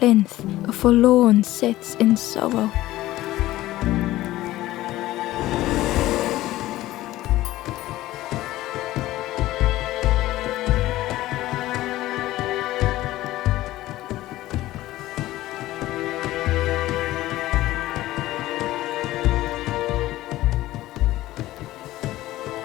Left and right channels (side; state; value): right; quieter; 16.1 dB